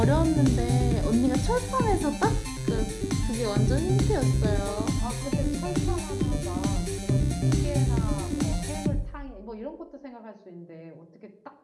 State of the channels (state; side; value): identical; both; correlation 1.00